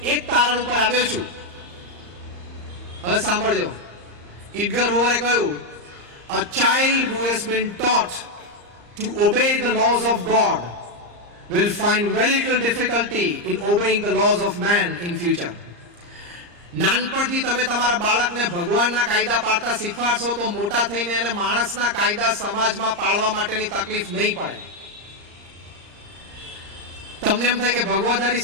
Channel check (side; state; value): left; late; 34 ms